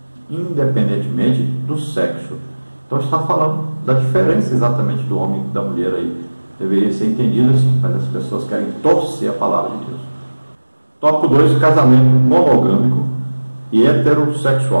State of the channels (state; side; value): inverted; both; correlation -1.00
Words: independentemente do sexo. Então está falando da diferença exatamente do homem e da mulher aí. Deveria ser entendido assim, mas as pessoas querem torcer a palavra de Deus. Tópico 2, casamento monogâmico e